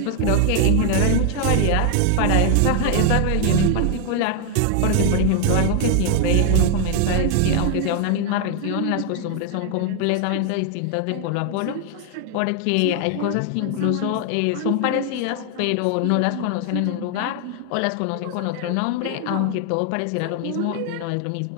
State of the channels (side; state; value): both; different; correlation 0.00